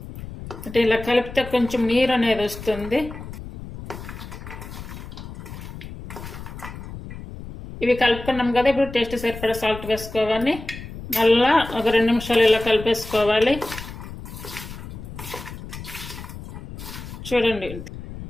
అంటే ఇలా కలిపితే కొంచెం నీరు అనేది వస్తుంది. ఇవి కలుపుకున్నాం కదా, ఇప్పుడు టేస్ట్ సరిపడా సాల్ట్ వేసుకోవాలి. మళ్ళా ఒక 2 నిమిషాలు ఇలా కలిపేసుకోవాలి. చూడండి,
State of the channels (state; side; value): noise; left; rumble, 12 dB below the sound